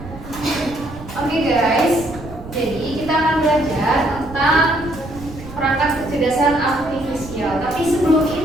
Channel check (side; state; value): right; noise; rumble, 14 dB below the sound